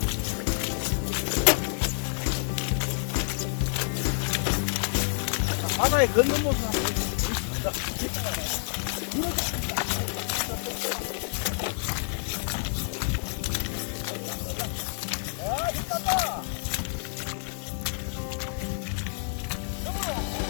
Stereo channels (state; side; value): silent; right; 59 dB below the other